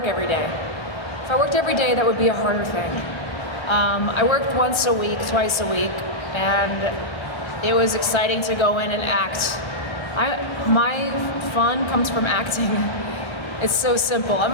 every day. If I worked every day, that would be a harder thing. I worked once a week, twice a week, and it was exciting to go in and act. My fun comes from acting. It's so simple.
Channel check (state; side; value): late; right; 1.3 ms